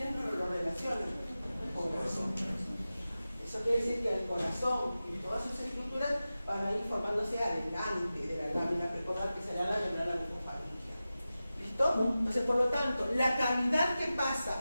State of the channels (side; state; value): both; inverted; correlation -0.94